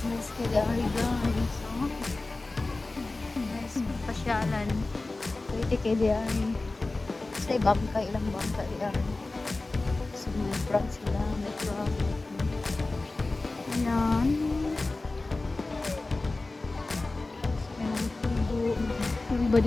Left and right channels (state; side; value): quieter; right; 3.2 dB